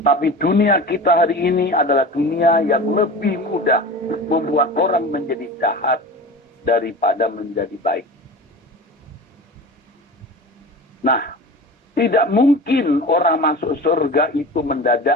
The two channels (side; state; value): both; normal; correlation 0.34